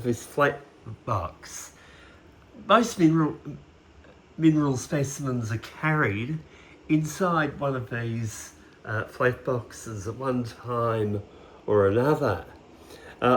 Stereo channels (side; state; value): both; identical; correlation 1.00